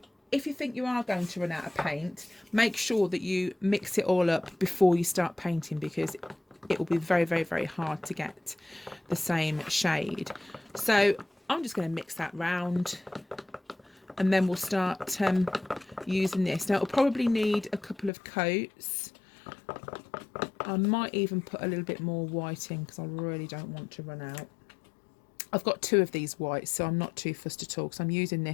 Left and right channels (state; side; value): drops out; right; at 18.1 s